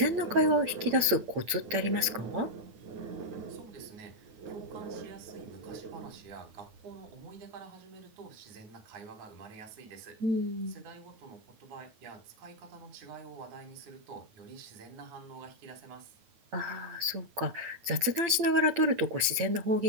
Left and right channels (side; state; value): left; late; 8.8 ms